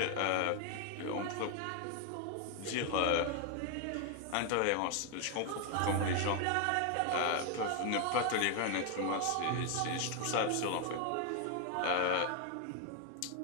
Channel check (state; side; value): different; both; correlation 0.01